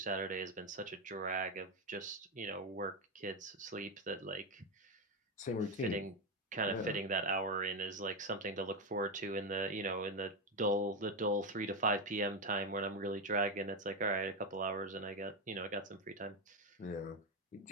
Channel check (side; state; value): both; normal; correlation 0.10